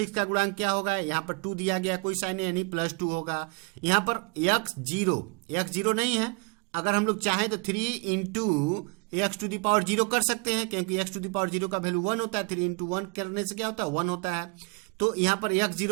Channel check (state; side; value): quieter; left; 32.1 dB